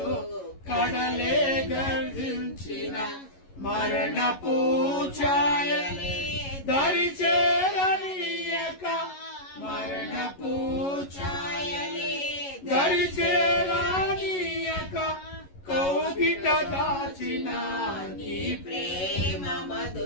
కడలే గర్జించిన. మరణపు ఛాయలే దరి చేరని దాచిన నీ ప్రేమ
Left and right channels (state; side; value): late; right; 11 ms